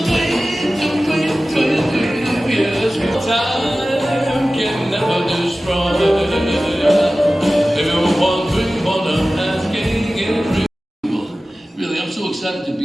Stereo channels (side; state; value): both; normal; correlation 0.96